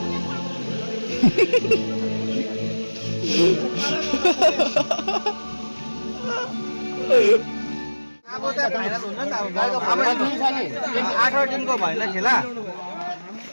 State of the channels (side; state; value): both; inverted; correlation -1.00